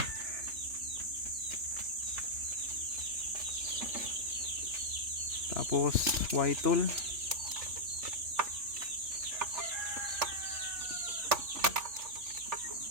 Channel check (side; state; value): left; late; 3.4 ms